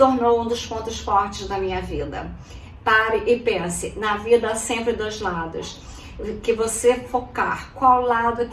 um dos pontos fortes da minha vida. Pare e pense, na vida há sempre dois lados. Que você focar, qual lado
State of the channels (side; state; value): both; identical; correlation 1.00